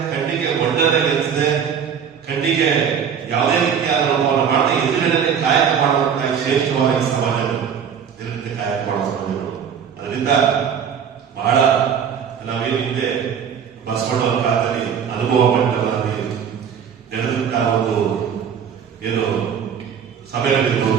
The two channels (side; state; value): left; quieter; 7.6 dB